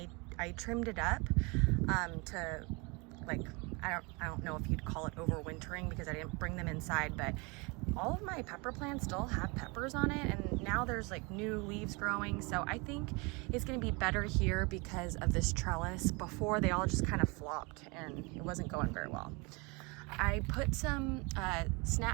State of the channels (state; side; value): quieter; left; 28.4 dB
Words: trimmed it up to, like, I don't know if you'd call it overwintering because I didn't bring them inside, but all of my pepper plants still have peppers on it, and now there's like new leaves growing. So I think it's gonna be better here because of this trellis. Before, they all just kind of flopped and it wasn't going very well. I put some